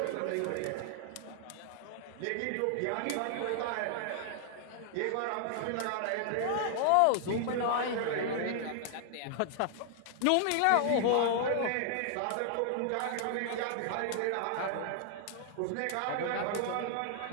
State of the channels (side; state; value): both; different; correlation 0.00